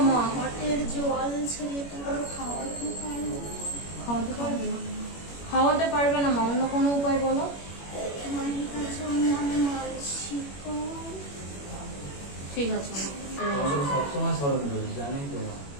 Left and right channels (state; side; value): late; right; 21 ms